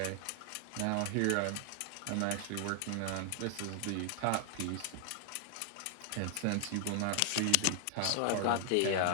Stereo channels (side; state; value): both; different; correlation 0.00